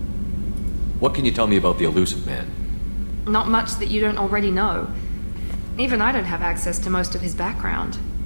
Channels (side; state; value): both; inverted; correlation -1.00